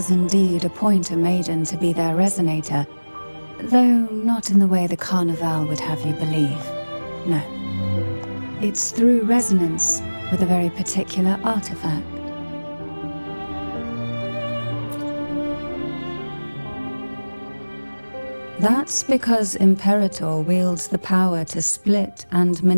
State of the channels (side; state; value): both; inverted; correlation -1.00